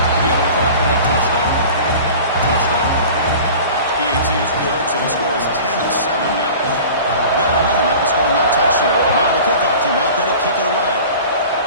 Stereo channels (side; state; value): both; inverted; correlation -0.40